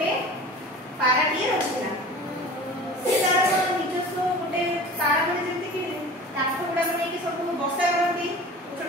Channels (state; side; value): normal; both; correlation 0.39